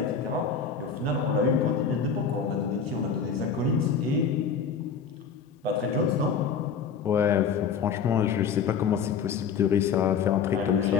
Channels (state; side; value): quieter; right; 6.4 dB